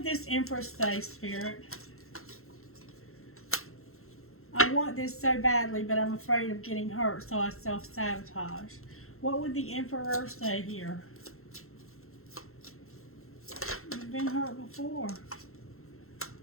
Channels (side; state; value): right; late; 0.62 ms